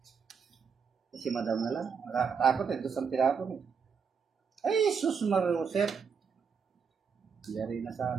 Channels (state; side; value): quieter; left; 6.2 dB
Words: Si madam na lang. Nakakatakot eh. Doon ang tinapon eh. Ay, sus Marusep. Yari na